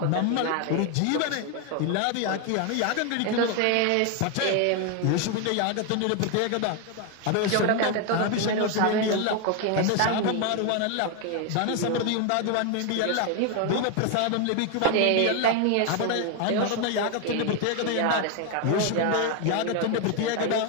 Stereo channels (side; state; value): both; different; correlation 0.01